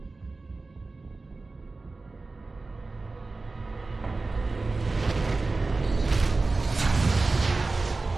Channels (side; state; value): left; quieter; 3.6 dB